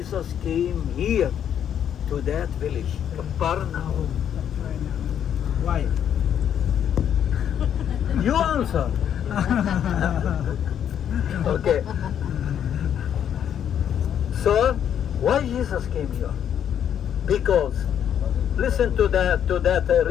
came here to that village, Capernaum? Why? You answer. Okay. So, why Jesus came here? Because, listen to that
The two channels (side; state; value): right; quieter; 9.3 dB